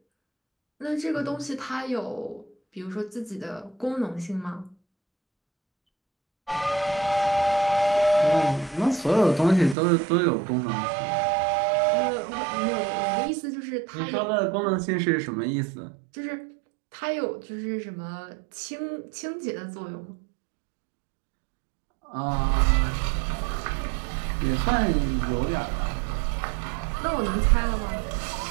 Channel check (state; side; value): drops out; left; at 9.8 s